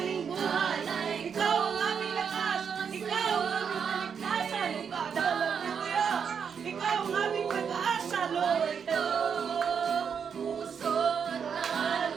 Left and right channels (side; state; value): left; quieter; 6.9 dB